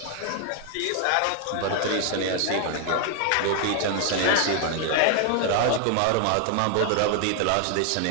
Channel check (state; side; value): different; both; correlation 0.00